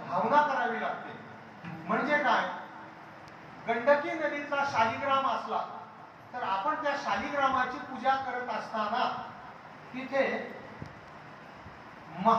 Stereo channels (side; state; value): both; identical; correlation 1.00